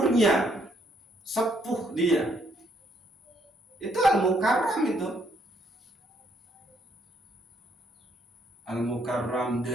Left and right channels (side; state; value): both; normal; correlation 0.70